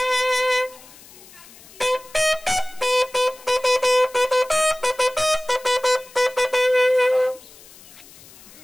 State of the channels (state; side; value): noise; left; hiss, 22 dB below the sound